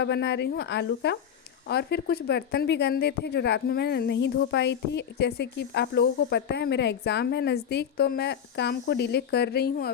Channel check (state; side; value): quieter; right; 8.5 dB